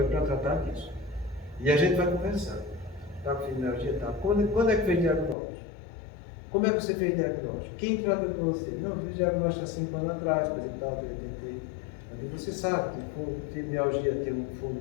para tratar disso. E a gente vai conversar. Está com fibromialgia? Tá. Quando é que fez diagnóstico? Como é que você fez diagnóstico? Quem trata de você? Não, eu fiz diagnóstico há 5 anos atrás, por exemplo, eu tentei. Você sabe que fibromialgia tem um fundo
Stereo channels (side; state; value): right; drops out; at 5.4 s